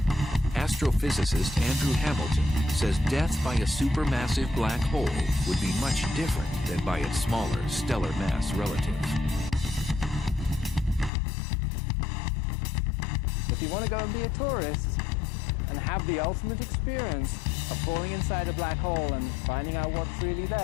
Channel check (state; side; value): drops out; right; at 11.1 s